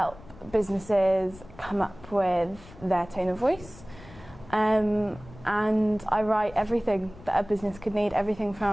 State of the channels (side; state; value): left; noise; rumble, 20 dB below the sound